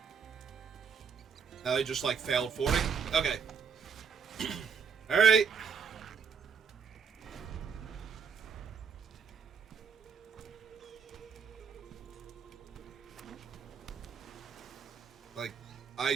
Now they just, like, failed fording? Okay. Alright. Like,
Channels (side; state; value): left; quieter; 6.3 dB